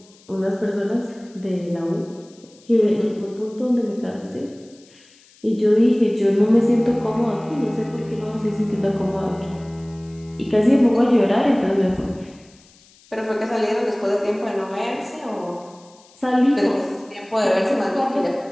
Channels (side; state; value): left; noise; hiss, 28 dB below the sound